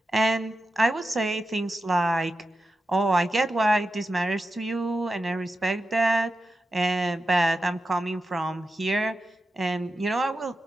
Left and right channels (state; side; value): normal; both; correlation 0.90